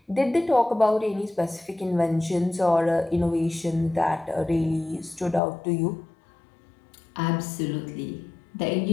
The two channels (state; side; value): drops out; right; at 5.4 s